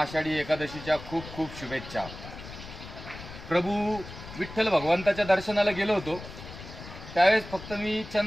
आषाढी एकादशीच्या खूप खूप शुभेच्छा। प्रभू विठ्ठल भगवंताच्या दर्शनाला गेलो होतो, त्यावेळेस फक्त मी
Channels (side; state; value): left; noise; rumble, 13 dB below the sound